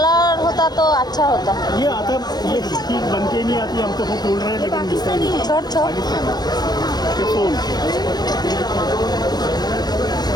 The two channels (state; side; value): late; right; 0.19 ms